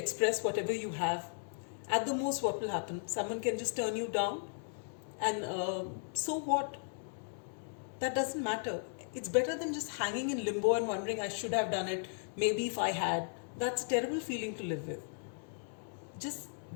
whatever you have. At the most, what will happen? Someone can just turn you down, and so what? That doesn't matter. It's better than just hanging in limbo and wondering, I should have done it, maybe if I had. That's a terrible feeling to live with. Just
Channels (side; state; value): right; silent; digital silence